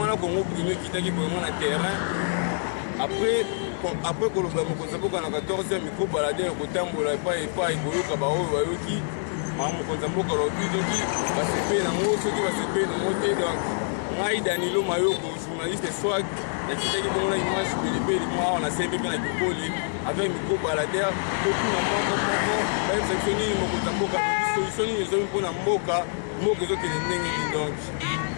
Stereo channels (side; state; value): right; silent; digital silence